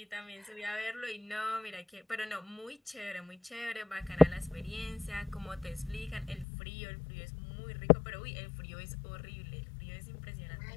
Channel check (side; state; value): right; drops out; at 6.5 s